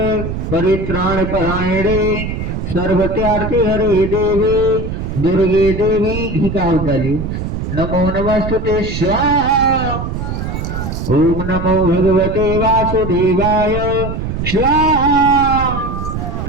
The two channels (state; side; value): noise; right; rumble, 4 dB below the sound